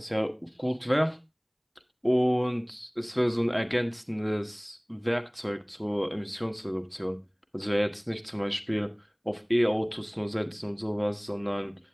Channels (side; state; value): both; identical; correlation 1.00